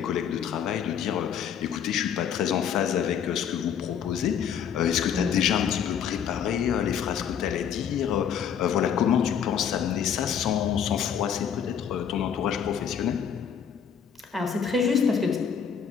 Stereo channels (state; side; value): quieter; right; 8.0 dB